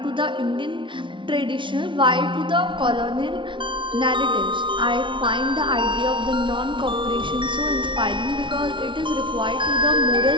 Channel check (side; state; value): left; late; 0.24 ms